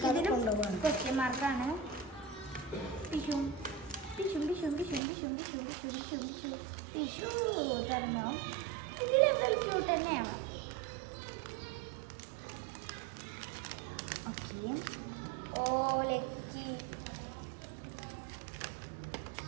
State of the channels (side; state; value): left; drops out; at 5.0 s